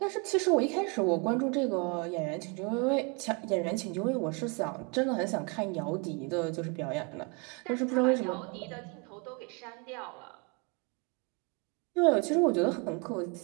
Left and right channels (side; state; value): left; quieter; 31.4 dB